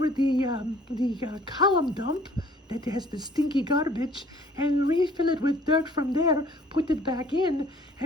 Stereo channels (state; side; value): normal; both; correlation 0.55